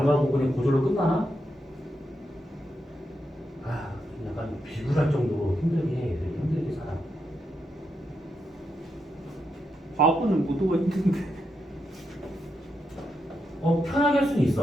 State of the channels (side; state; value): both; normal; correlation 0.83